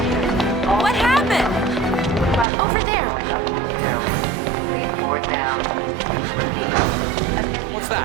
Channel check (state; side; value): drops out; left; at 2.5 s